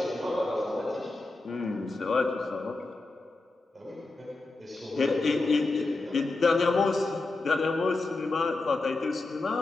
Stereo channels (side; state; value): right; quieter; 3.3 dB